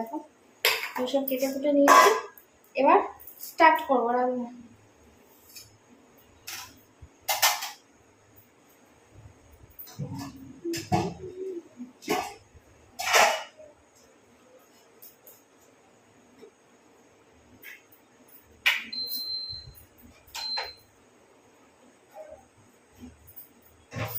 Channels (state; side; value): identical; both; correlation 1.00